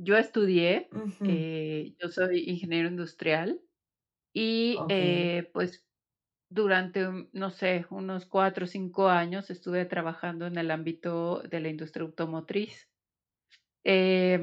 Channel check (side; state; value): both; identical; correlation 1.00